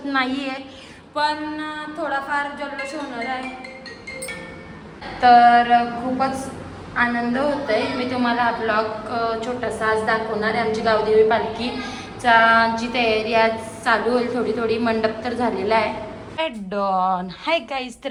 नाही आहे, पण थोडाफार जल्लोष होणार आहे. तर खूपच आनंद होतोय. मी तुम्हाला ब्लॉग छोटासा आज दाखवणार आहे. आमची गावदेवी पालखीचा जी तयारी आज चालू होईल, थोडी थोडी मंडप तर झालेला आहे. डॉन हाय गाईज,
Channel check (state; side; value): identical; both; correlation 1.00